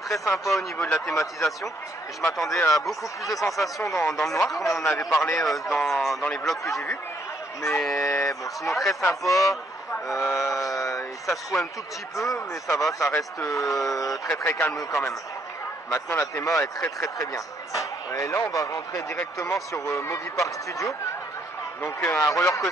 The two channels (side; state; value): both; normal; correlation 0.70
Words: sympa au niveau de la thématisation. Et je m'attendais à beaucoup plus de sensations dans le noir, comme on en avait parlé dans les vlogs que j'ai vus. Mais bon, sinon très sympa. Ça se trouve un tout petit peu, mais ça va, ça reste très calme quand même. Maintenant la théma est très bien. Et là on va rentrer directement sur Movie Park Studio. Donc un roller